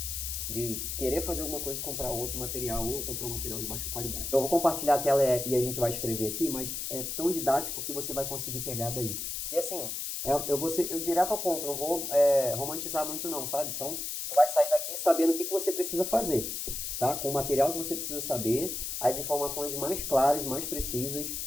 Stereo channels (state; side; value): noise; left; hiss, 4 dB below the sound